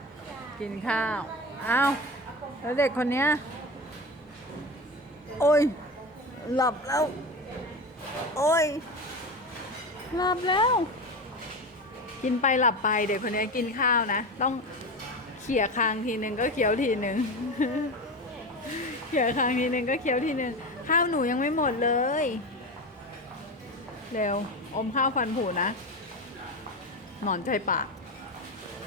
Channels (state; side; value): normal; both; correlation 0.24